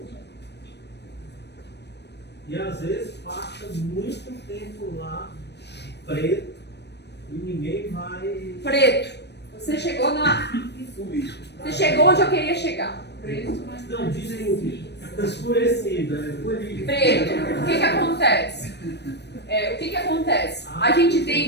E às vezes passa muito tempo lá, preto, e ninguém vai. Preto. Você chegou na. Você chegou onde eu queria chegar. Preto. Não, desculpe. Escurecida. Preto. O que acontece? O que acontece? A gente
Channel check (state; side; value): late; right; 0.50 ms